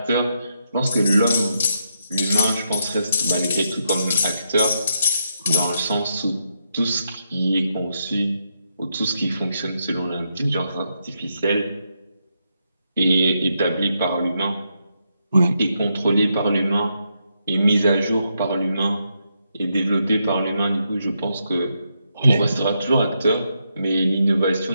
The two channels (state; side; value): inverted; both; correlation -0.81